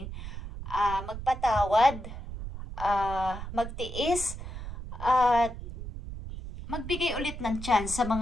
magpatawad, magtiis, at magbigay ulit ng chance sa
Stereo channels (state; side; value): noise; right; rumble, 9 dB below the sound